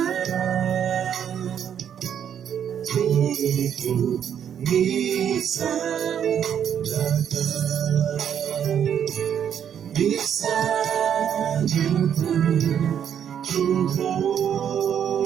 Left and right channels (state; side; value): quieter; left; 8.9 dB